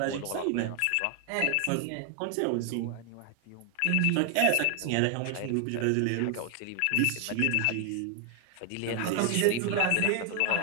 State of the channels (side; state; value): both; different; correlation 0.00